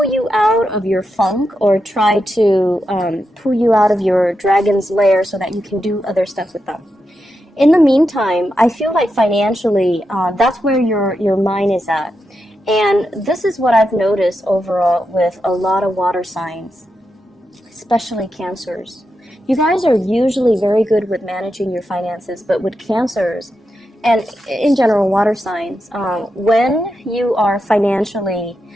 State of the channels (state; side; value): normal; both; correlation 0.87